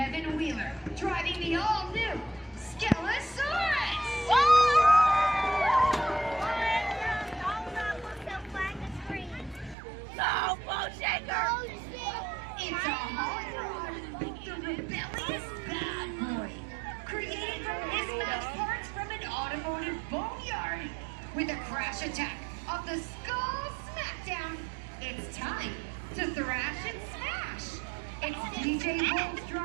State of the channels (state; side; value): drops out; left; at 9.8 s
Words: Wheeler driving the all-new Skelosaurus. Go, Bone Shaker! It's a hot rod, the rebellious bad boy, created from mismatched parts from an automotive boneyard. With a crash attack of the Skull Smackdown, it's time to thrash and smash. It's DJ Wolf